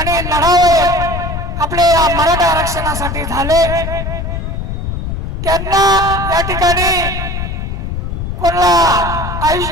लढावे आपले या मराठा आरक्षणासाठी झाले। त्यांना या ठिकाणी कोणाला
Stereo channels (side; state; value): left; noise; rumble, 4 dB below the sound